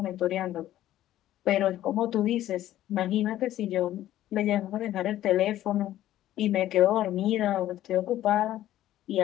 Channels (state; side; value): quieter; right; 13.3 dB